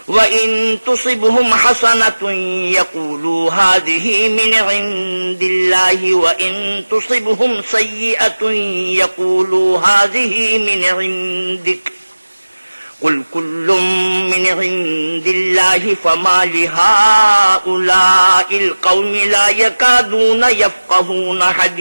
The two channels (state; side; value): inverted; both; correlation -1.00